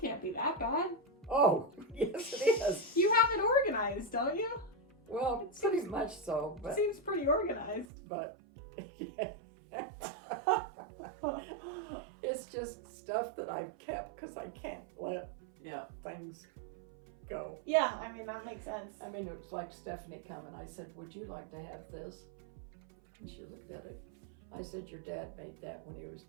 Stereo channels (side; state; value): left; drops out; at 7.9 s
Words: can't be that bad. Oh, yes it is. You have it organized, don't you? Well, pretty much so, but Seems pretty organized. it's just stuff that I've kept because I can't let Yeah. things go. Yeah, I mean, that makes sense. I mean, it was like Stephanie coming. I said, would you like to have this? And she looked at it. I said, your dad made that when he was